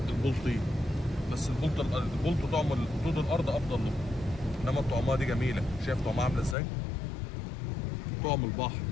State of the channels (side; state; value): right; drops out; at 6.6 s